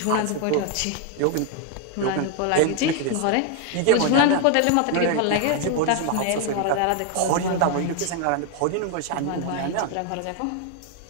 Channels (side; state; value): both; different; correlation 0.00